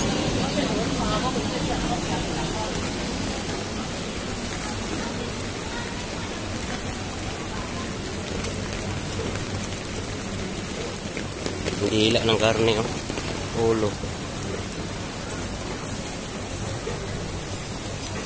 Hila ng karne, oh. Ulo.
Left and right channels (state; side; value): identical; both; correlation 1.00